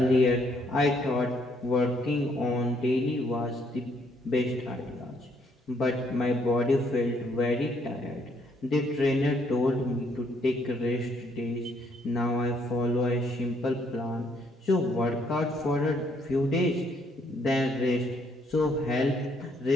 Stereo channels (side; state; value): both; normal; correlation 0.69